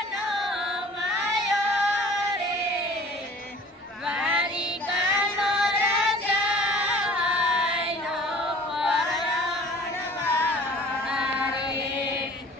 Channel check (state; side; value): normal; both; correlation 0.47